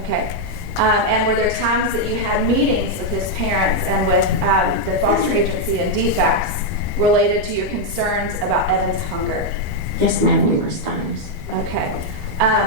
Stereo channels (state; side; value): normal; both; correlation 0.00